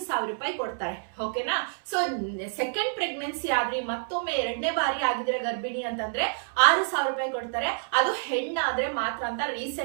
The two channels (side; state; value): left; silent; 59 dB below the other